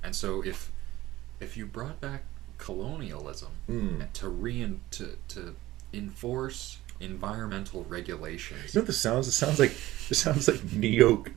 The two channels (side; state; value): left; quieter; 16.6 dB